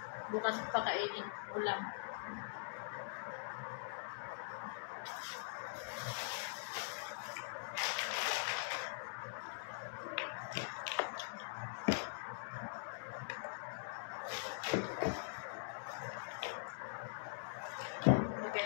Bukas ko pakainin ulam. Lagyan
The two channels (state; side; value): silent; right; digital silence